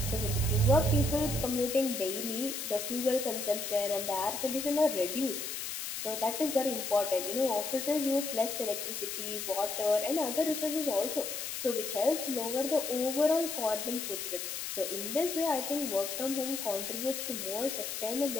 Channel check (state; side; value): noise; left; hiss, 5 dB below the sound